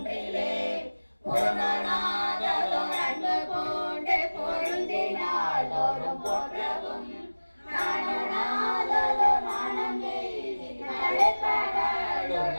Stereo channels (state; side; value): inverted; both; correlation -1.00